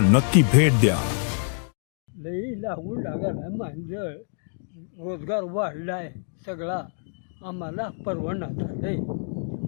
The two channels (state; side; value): silent; right; digital silence